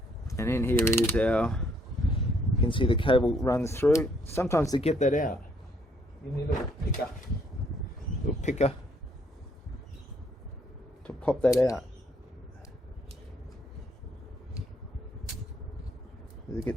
And in here is our can see the cable runs through. Sometimes to get that out, you need a little picker to pop that out. It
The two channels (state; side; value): normal; both; correlation 0.68